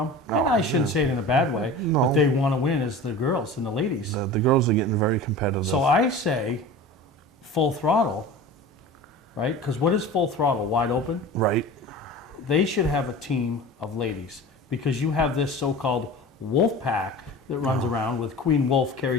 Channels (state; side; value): normal; both; correlation 0.36